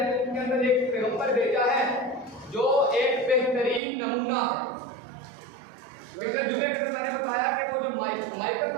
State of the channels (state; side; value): drops out; left; at 3.8 s